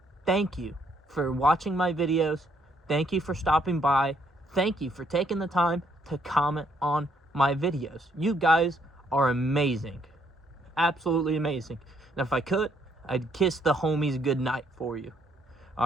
thank you for watching my videos. Thank you for stopping by. Thank you for taking the time to comment on my videos. You guys are amazing. Absolutely amazing. And if I could, I'd kiss the homies goodnight for you.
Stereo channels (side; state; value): both; normal; correlation 0.70